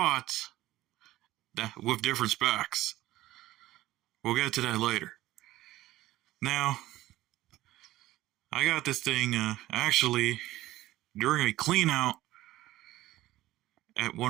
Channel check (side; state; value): left; quieter; 16.0 dB